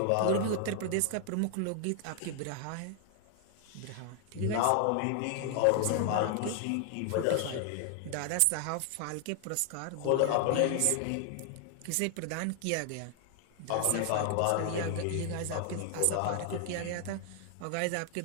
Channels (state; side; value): different; both; correlation 0.00